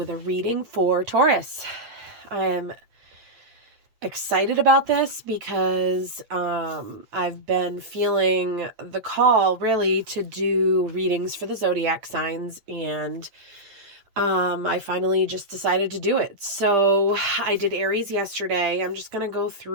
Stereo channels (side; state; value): left; late; 9.1 ms